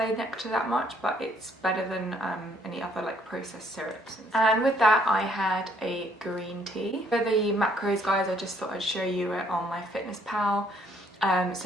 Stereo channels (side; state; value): both; normal; correlation 0.66